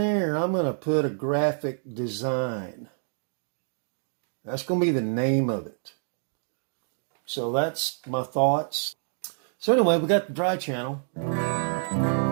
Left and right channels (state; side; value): silent; left; digital silence